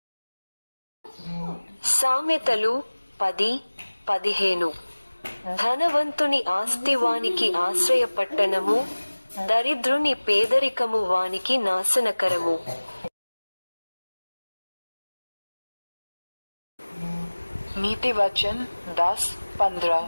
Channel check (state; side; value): inverted; both; correlation -1.00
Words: సామెతలు 10:15. ధనవంతుని ఆస్తి వానికి ఆశ్రయపట్టణము, దరిద్రుని పేదరికము వానికి నాశనకరము. नीति वचन 10:15.